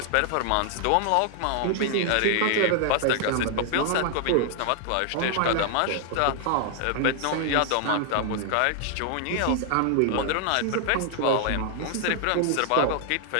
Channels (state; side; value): different; both; correlation 0.00